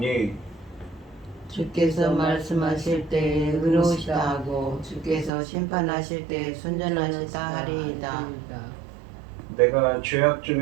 주께서 말씀하실 때에 의로우시다 하고 주께서 심판하실 때에 순전하시다 하리이다. 내가 죄악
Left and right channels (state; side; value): drops out; left; at 5.3 s